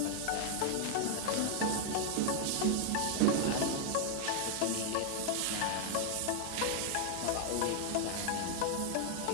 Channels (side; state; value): both; different; correlation 0.00